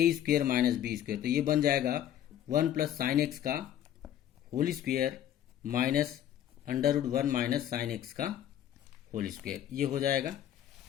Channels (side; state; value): right; quieter; 11.1 dB